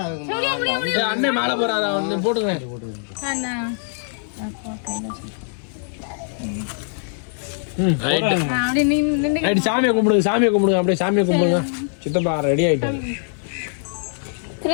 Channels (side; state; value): right; silent; digital silence